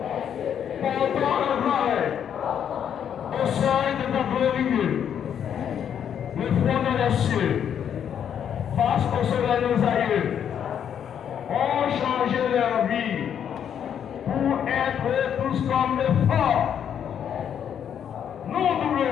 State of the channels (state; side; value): quieter; right; 8.7 dB